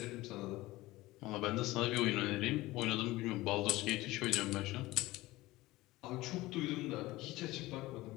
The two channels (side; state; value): right; quieter; 18.8 dB